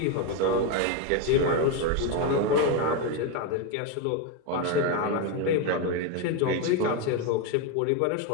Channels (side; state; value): both; different; correlation 0.03